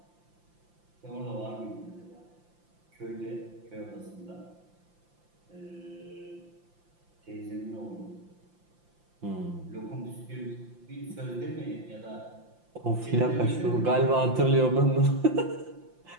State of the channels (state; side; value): late; left; 5.8 ms